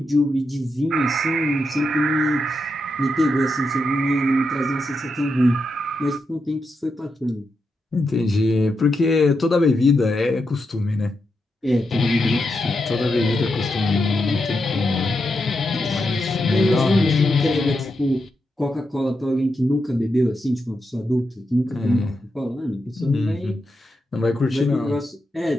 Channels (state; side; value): normal; both; correlation 0.85